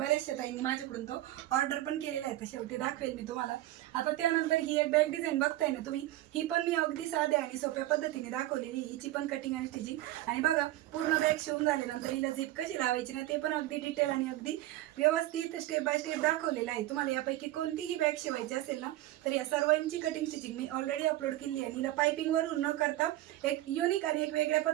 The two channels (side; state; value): left; quieter; 15.5 dB